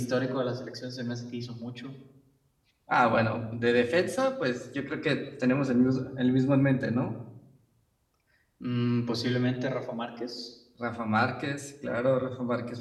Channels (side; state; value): both; identical; correlation 1.00